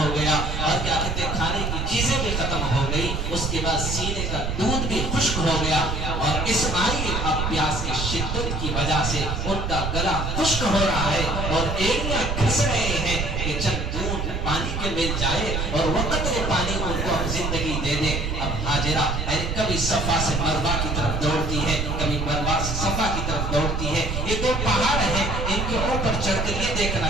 گیا اور کیا کہتے ہیں کھانے کی چیزیں بھی ختم ہو گئی. اس کے بعد سینے کا دودھ بھی خشک ہو گیا اور اسماعیل اب پیاس کی شدت کی وجہ سے ان کا گلا خشک ہو رہا ہے اور ایڑیاں گھس رہے ہیں کہ چند دودھ پانی کے مل جائے اور وہ قطرے پانی ان کو زندگی دے دے. اب ہاجرہ کبھی صفا سے مروہ کی طرف دوڑتی ہے, کبھی مروہ سے صفا کی طرف دوڑتی ہے. یہ دو پہاڑ ہیں, ان کے اوپر چڑھ کر یہ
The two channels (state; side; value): noise; right; rumble, 2 dB below the sound